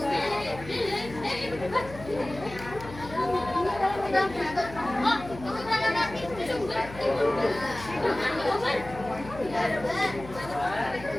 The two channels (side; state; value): left; noise; hum, 15 dB below the sound